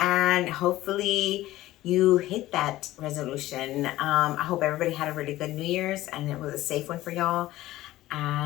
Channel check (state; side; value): quieter; right; 16.0 dB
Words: hopefully you hit that resolution. I hope everybody had a really good New Year's and it was a safe one for y'all.